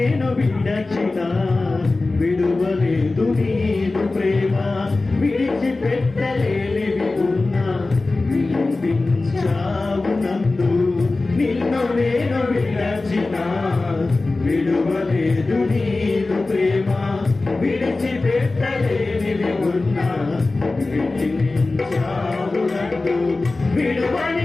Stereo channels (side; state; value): right; quieter; 3.3 dB